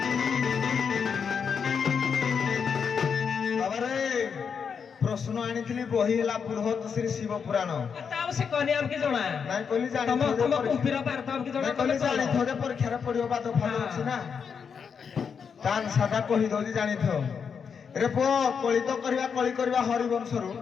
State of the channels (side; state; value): right; quieter; 6.5 dB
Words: प्रश्न आनी बही है बृहत श्री शिव पुराण से कहनी हमके जणा नहीं कहली जानी तुम कुंपीर पार तो हमके जणा कहली जानी थोड़े परीक्षा रे पढ़ियो बा तो फल अछि ना तान सादा कहि दोजी जानी थो रे पो कली तो करबा हरिवंश रु